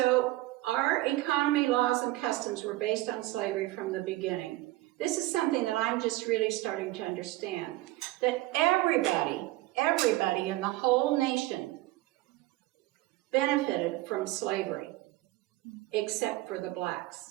our economy, laws, and customs were based on slavery from the beginning. This is something that I'm just really starting to understand, that everybody in the whole nation benefited from slavery, except for the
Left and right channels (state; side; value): quieter; left; 18.3 dB